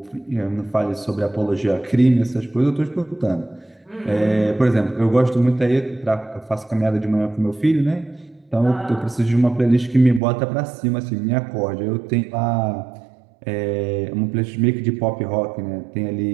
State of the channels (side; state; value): left; drops out; at 10.2 s